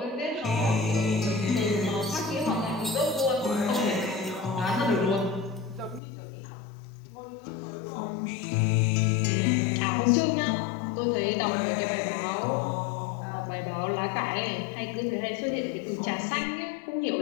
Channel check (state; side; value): drops out; right; at 6.0 s